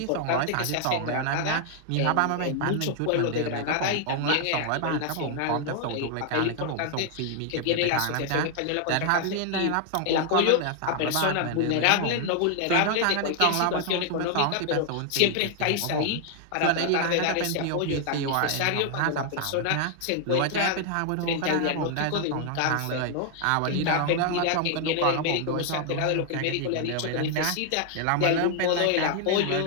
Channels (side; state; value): both; different; correlation 0.00